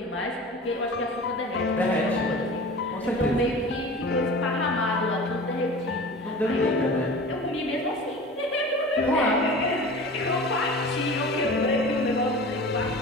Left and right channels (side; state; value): both; normal; correlation 0.37